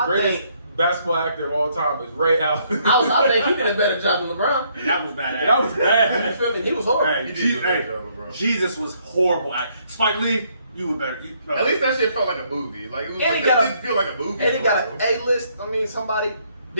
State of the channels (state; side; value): inverted; both; correlation -0.69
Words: greatest think basketball actor of all time is Ray Allen. I think he did a better job than LeBron. And that was bad. That was You bad. feel me? He was horrible. Hey, He did do a better job, bro. Jesus was horrible acting. Spike Lee, you were better. At least that shit felt like a movie. Like, it was And like, he got it a- didn't feel like a movie. And he got an A-list. I mean, somebody.